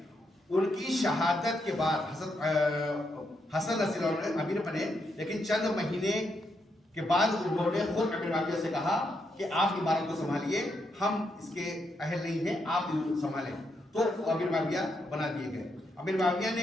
ان کی شہادت کے بعد حضرت حسن رضی اللہ عنہ امیر بنے، لیکن چند مہینے کے بعد انہوں نے خود امیر معاویہ سے کہا کہ آپ عمارت کو سنبھالیے، ہم اس کے اہل نہیں ہیں، آپ سنبھالیں، تو امیر معاویہ بنا دیے گئے۔ امیر معاویہ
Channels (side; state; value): both; normal; correlation 0.80